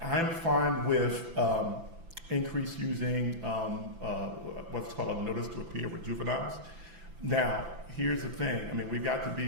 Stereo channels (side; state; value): left; late; 5.9 ms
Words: fine with increase using what's called a notice to appear with juveniles. Now, here's the thing. I mean, we've got to